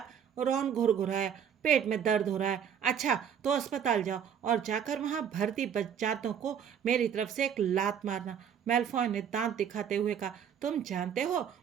रॉन घुरघुराया, पेट में दर्द हो रहा है। अच्छा तो अस्पताल जाओ और जाकर वहां भर्ती बच्चातों को मेरी तरफ से एक लात मारना। मेलफॉय ने दांत दिखाते हुए कहा, तुम जानते हो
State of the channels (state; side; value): quieter; left; 8.2 dB